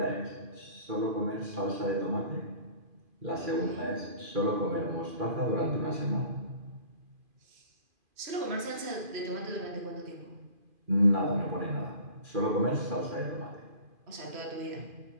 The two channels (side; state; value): left; late; 2.5 ms